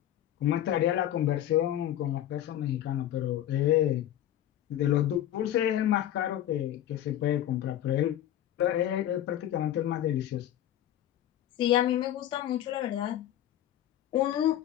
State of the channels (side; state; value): right; quieter; 12.1 dB